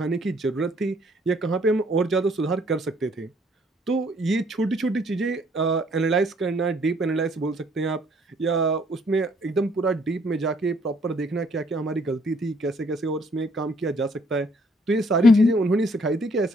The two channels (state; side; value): normal; both; correlation 0.64